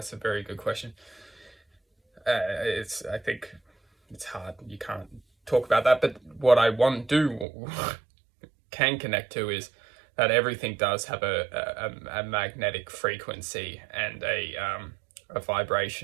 a very good question. I think it's hard. You can't talk about that. But what I can connect to is that everything does have a magnetic frequency and a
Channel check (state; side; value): drops out; left; at 7.5 s